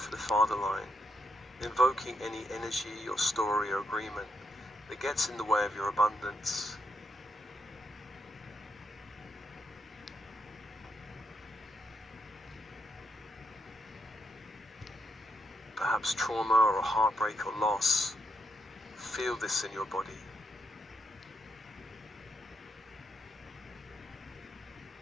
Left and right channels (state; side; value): normal; both; correlation 0.80